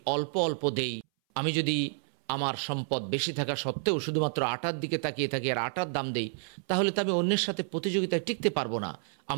অল্প অল্প দেই, আমি যদি আমার সম্পদ বেশি থাকা সত্ত্বেও শুধুমাত্র আটার দিকে তাকিয়ে থাকি আর আটার দাম দেই, তাহলে তো আমি অন্যের সাথে প্রতিযোগিতায় টিকতে পারবো না।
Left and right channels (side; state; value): left; silent; 58 dB below the other